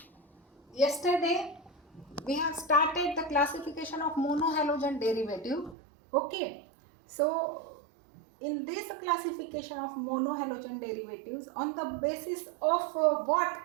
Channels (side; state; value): left; drops out; at 5.8 s